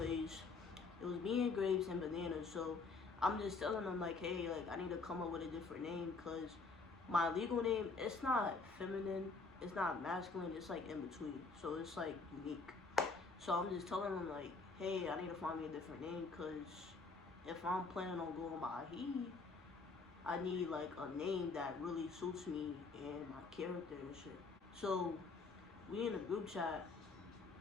it was me and Grapes and Bananas. So I'm just telling them like, hey, like I need to come up with a different name, cause my legal name, it's not feminine, it's not masculine, it's like in between. So it's like unique. So I'm just telling them like, hey, I need to find me a different name, because if I'm planning on going by he, I need like a name that really suits me and my character and shit. So we in a group chat.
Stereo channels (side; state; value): right; quieter; 4.1 dB